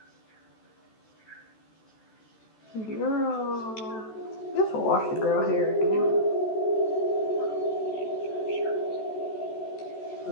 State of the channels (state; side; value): late; right; 14 ms